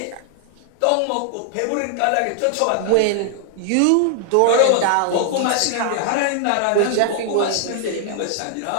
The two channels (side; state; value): both; different; correlation 0.00